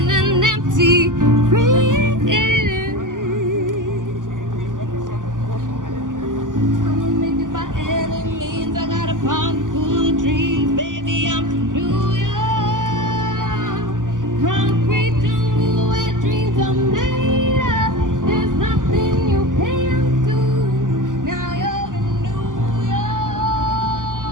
an empty fridge. I'ma make it by any means. I got a pocket full of dreams, baby. I'm from New York, concrete jungle where dreams are made of. There's nothing you can't do. Now you're in New York.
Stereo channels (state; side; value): late; left; 0.88 ms